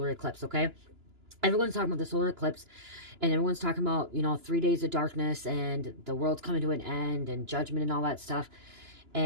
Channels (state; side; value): late; left; 2.9 ms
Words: eclipse, okay? Everyone's talking about the solar eclipse, and everyone's talking about, 3 days of darkness, and the world's coming to an end, and judgment, and all that stuff.